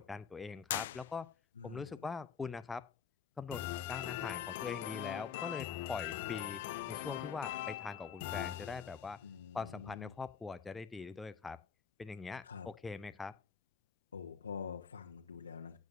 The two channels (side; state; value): right; quieter; 7.0 dB